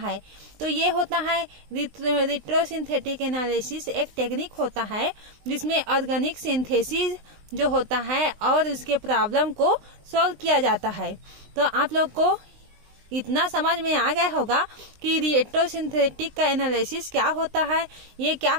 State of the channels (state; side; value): late; left; 19 ms